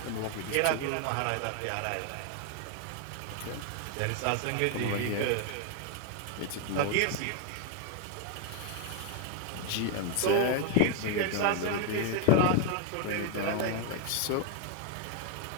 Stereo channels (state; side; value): different; both; correlation 0.01